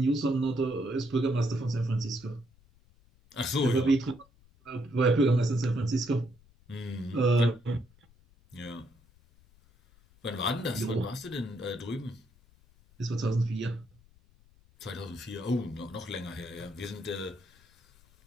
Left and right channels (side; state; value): left; noise; rumble, 29 dB below the sound